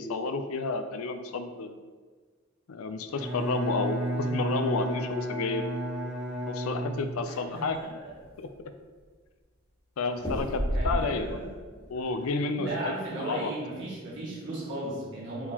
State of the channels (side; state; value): both; normal; correlation 0.23